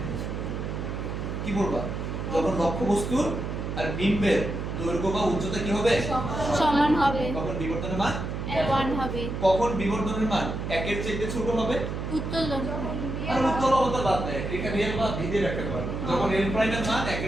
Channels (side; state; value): right; noise; hum, 4 dB below the sound